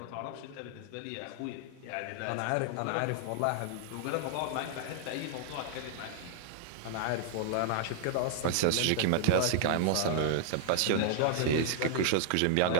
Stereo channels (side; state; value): both; different; correlation -0.01